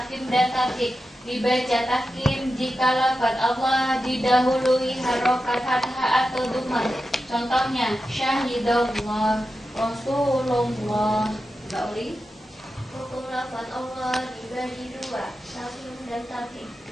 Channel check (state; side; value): normal; both; correlation 0.91